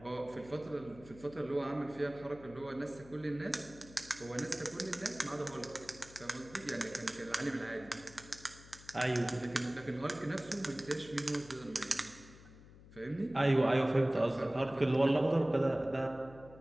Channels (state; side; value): noise; left; hum, 20 dB below the sound